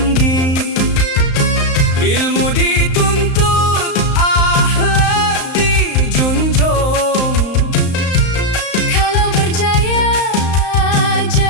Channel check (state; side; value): late; right; 35 ms